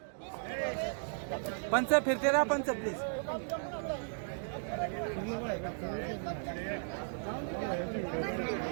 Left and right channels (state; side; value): silent; left; digital silence